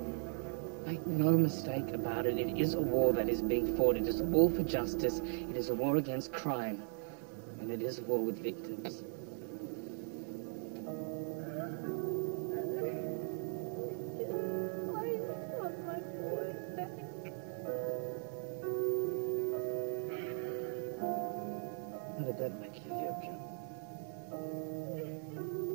Make no mistake about it. It is a war that is being fought. It is a war for justice. It is a war against crime. And it is a war with victims. I just want my boy back. How did that make you feel, John?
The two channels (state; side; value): silent; left; 52 dB below the other